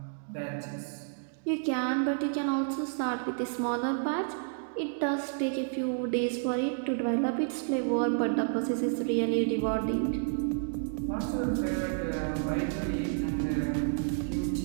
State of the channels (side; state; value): left; silent; digital silence